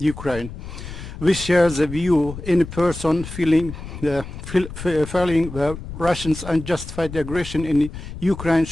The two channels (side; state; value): left; noise; rumble, 11 dB below the sound